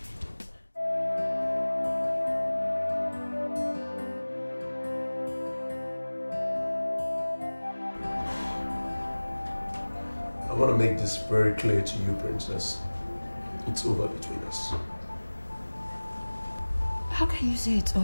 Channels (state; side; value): inverted; both; correlation -1.00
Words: I want to make this very clear to you, Princess. It's over between us. How can you say it's